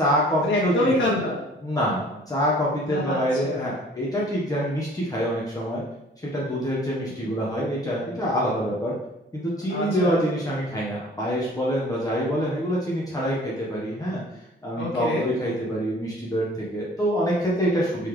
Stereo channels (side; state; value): both; normal; correlation 0.52